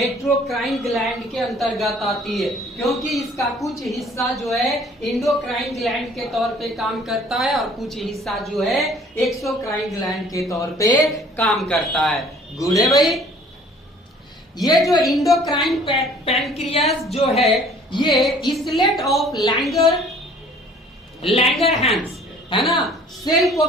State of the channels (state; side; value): normal; both; correlation 0.54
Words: ग्लैंड के अंतर्गत आती है, क्योंकि इसका कुछ हिस्सा जो है इंडोक्राइन ग्लैंड के तौर पे काम करता है और कुछ हिस्सा जो है एक्सोक्राइन ग्लैंड के तौर पे काम करता है। गुड है भाई। ये जो इंडोक्राइन पैनक्रियास जो है ये इसलेट ऑफ लैंगरहैंस है ना सेल को